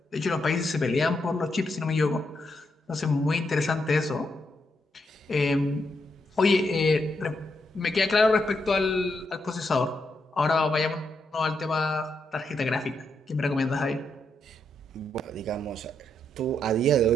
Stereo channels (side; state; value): both; normal; correlation 0.80